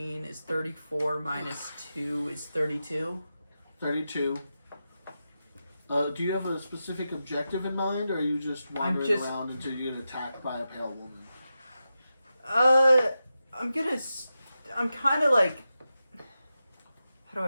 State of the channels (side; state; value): both; inverted; correlation -0.91